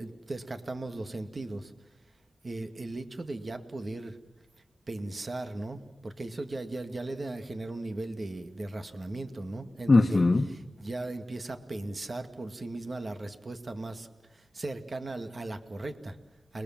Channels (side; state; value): both; normal; correlation 0.95